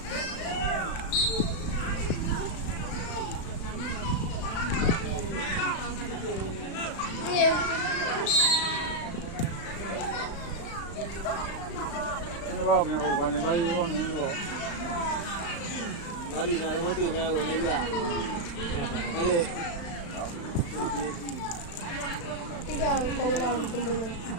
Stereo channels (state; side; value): late; right; 36 ms